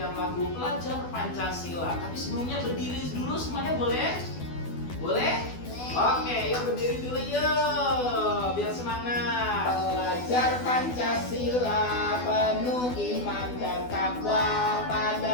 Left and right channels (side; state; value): right; late; 12 ms